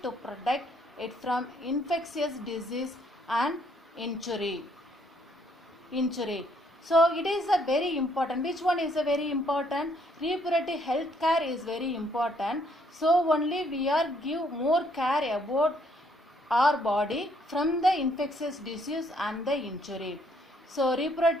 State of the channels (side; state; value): both; normal; correlation 0.68